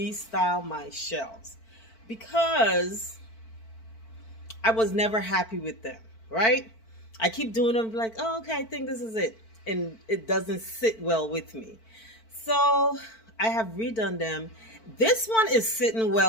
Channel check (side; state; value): right; late; 4.5 ms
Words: my shelves because I was never happy with them, right? I keep doing them like, oh, okay, I think this is it. And it doesn't sit well with me. So I have redone them. This one is sitting